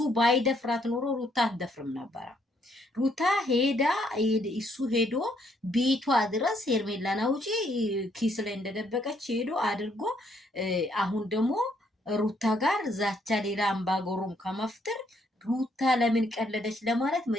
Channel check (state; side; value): normal; both; correlation 0.71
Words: ባይደፍራት ኖሮ ሩታ አትደፍርም ነበረ። ሩታ ሄዳ እሱ ሄዶ ቤቷ ድረስ ኤርሜላን አውጪ ኪስ ላይ እንደደበቀች ሄዶ አድርጎ አሁን ደግሞ ሩታ ጋር ዛቻ ሌላ አምባገሩም ከመፍጠር ሩታ ለምን ቀለደች ለማለት